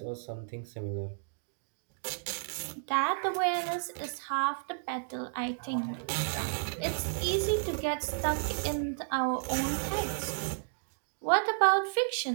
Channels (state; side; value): silent; left; digital silence